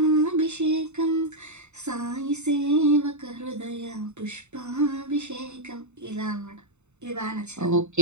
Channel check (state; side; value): late; left; 0.82 ms